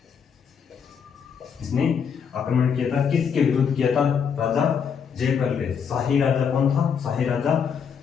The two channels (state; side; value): quieter; right; 6.9 dB